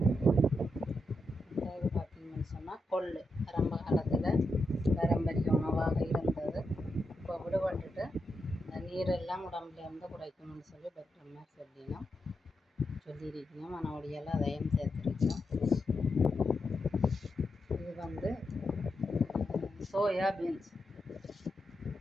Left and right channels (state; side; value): normal; both; correlation 0.85